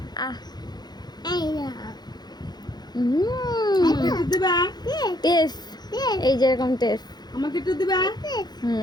আহ এই না। আমাকে একটু দিবা? টেস, টেস। এই যেরকম টেস। আমাকে একটু দিবা?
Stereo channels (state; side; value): late; right; 0.20 ms